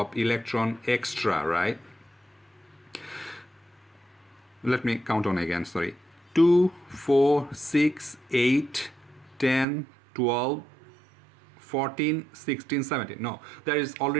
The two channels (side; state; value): left; drops out; at 9.7 s